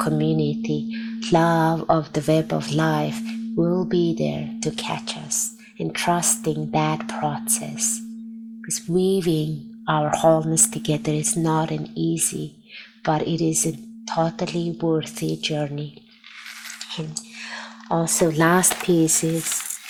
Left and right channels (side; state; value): both; identical; correlation 1.00